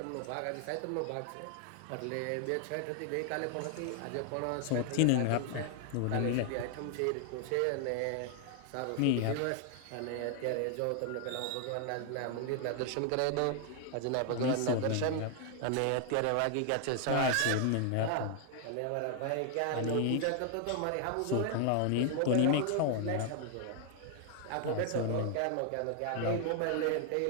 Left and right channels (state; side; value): different; both; correlation 0.00